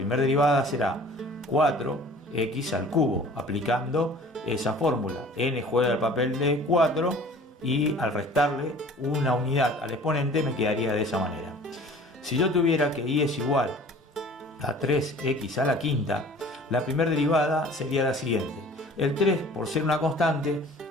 derivada será 4x al cubo, aplicando esa fórmula. N juega el papel de 4 y al restarle una unidad al exponente me quedaría de esa manera. Si yo tuviera que y es igual a 3x a la quinta, la primera derivada sería la siguiente. El 3, por ser una constante,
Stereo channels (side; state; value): both; normal; correlation 0.47